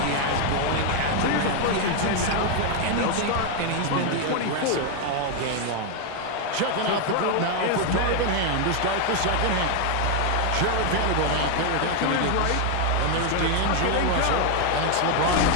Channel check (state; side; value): different; both; correlation 0.01